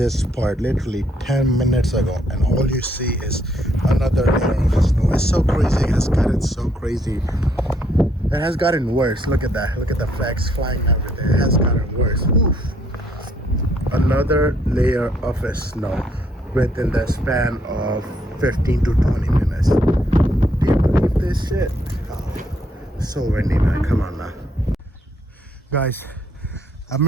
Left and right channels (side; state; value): both; normal; correlation 0.70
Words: part. Literally 10 minutes ago. And all you see is another layer of snow. It's so crazy. It has gotten so crazy. It has gotten worse. Look at that. Look at the flags flying everywhere. It has gotten worse. Oof. Another layer of snow within the span of 15 to 20 minutes. Do you believe this shit? Oh, so windy, man. Come on now. Guys, I'm